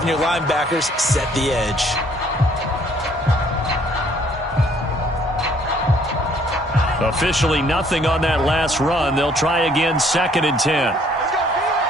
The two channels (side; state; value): both; normal; correlation 0.62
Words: your linebackers set the edge. Officially nothing on that last run. They'll try again, 2nd and 10.